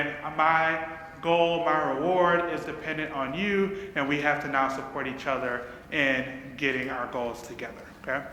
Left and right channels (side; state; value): both; identical; correlation 1.00